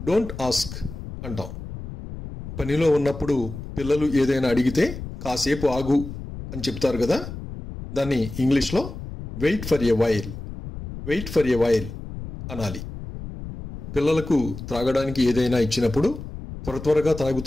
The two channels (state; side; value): noise; left; rumble, 10 dB below the sound